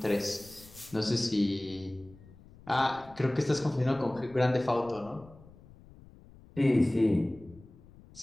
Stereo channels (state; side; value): noise; left; rumble, 22 dB below the sound